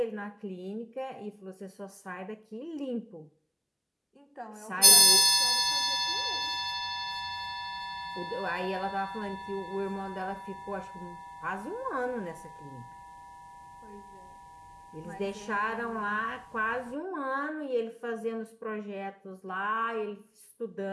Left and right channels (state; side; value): identical; both; correlation 1.00